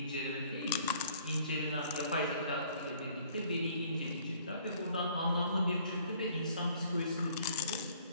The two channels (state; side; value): inverted; both; correlation -0.58